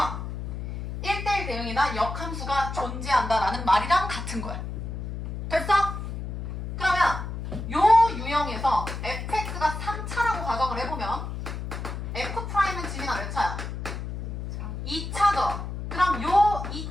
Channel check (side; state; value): left; noise; hum, 6 dB below the sound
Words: 1대1 대응이나 역함수가 존재한다 라는 말이랑 같은 거야. 됐어? 그러면 요 유형에서 fx가 3차라고 가정을 해보면 f'은 지민아 몇 차야? 2차죠. 그럼 요